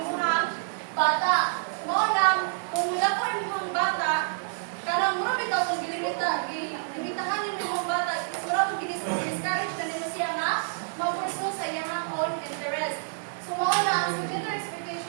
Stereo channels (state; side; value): silent; left; digital silence